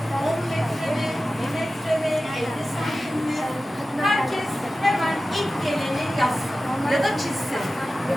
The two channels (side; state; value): both; normal; correlation 0.95